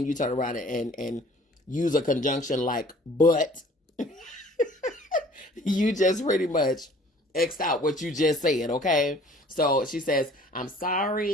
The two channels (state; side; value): normal; both; correlation 0.52